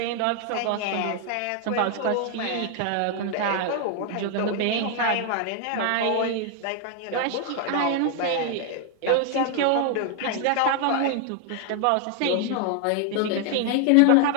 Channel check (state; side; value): different; both; correlation 0.00